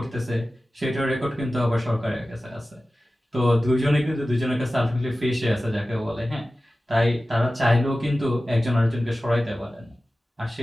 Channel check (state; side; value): normal; both; correlation 0.95